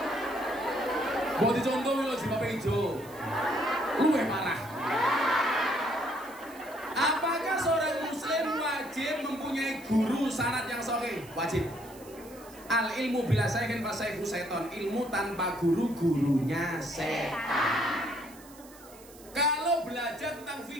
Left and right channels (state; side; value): noise; right; hiss, 21 dB below the sound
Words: Buat dicontoh lho jilbabnya hijau. Luwih parah. Apakah seorang muslim wajib wajib mempunyai guru sanad yang sahih, wajib. Al ilmu bila sayyidin fasayhu seton, ilmu tanpa guru gurunya setan. Kalau belajar tentang